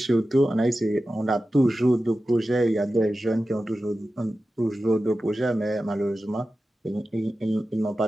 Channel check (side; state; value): both; normal; correlation 0.93